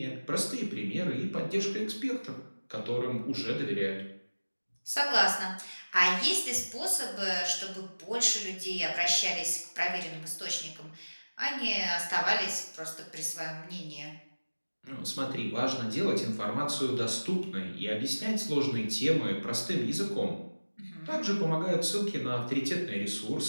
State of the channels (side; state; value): both; inverted; correlation -1.00